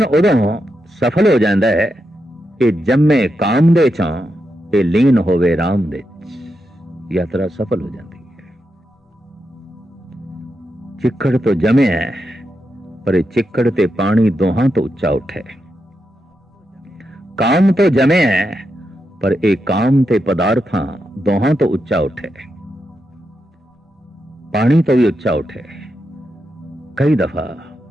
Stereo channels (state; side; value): normal; both; correlation 0.85